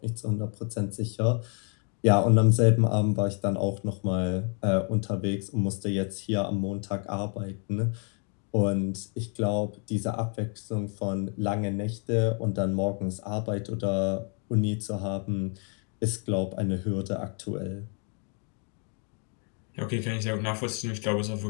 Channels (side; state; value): right; quieter; 39.8 dB